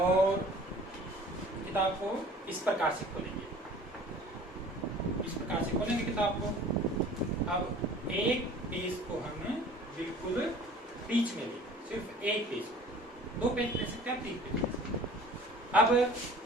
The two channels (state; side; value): normal; both; correlation 0.46